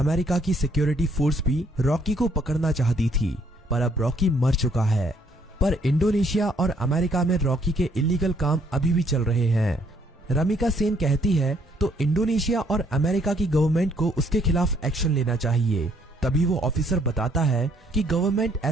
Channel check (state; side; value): normal; both; correlation 0.66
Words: की सिक्योरिटी फोर्स भी रॉकी को पकड़ना चाहती थी, पर अब रॉकी मर चुका है। पर इंडोनेशिया और अमेरिका में रॉकी के इलीगल काम अभी भी चल रहे हैं। रमिका सेन कहती है तो इंडोनेशिया और अमेरिका की गवर्नमेंट को उसके खिलाफ एक्शन लेना चाहिए। तभी वो ऑफिसर बताता है कि गवर्नमेंट